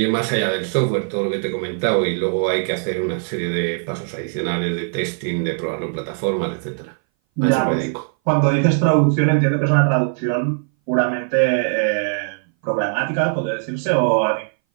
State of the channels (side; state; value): left; silent; 60 dB below the other